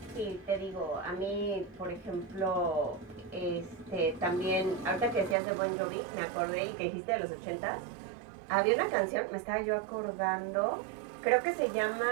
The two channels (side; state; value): left; drops out; at 5.4 s